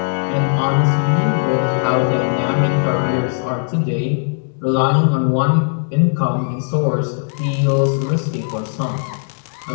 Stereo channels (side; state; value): right; silent; 63 dB below the other